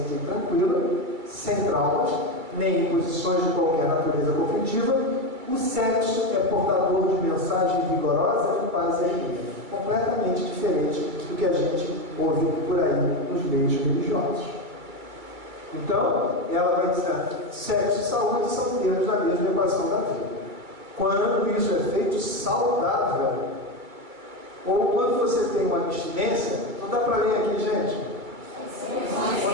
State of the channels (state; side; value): late; left; 2.2 ms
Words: e tranquila, sem traumas, nem imposições de qualquer natureza conflitiva, o sexo é portador de mensagem vigorosa de paz e alegria, completamente diferente do que a gente ouve por aí nos meios religiosos. Então, ela vai dizer, sexo e saúde são termos da mesma equação da vida. Quando isso é feito saudável, ou quando você tem uma abstinência, não dá para ler aqui, gente?